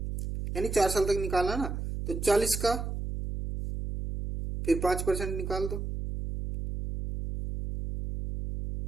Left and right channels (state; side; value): noise; right; hum, 4 dB below the sound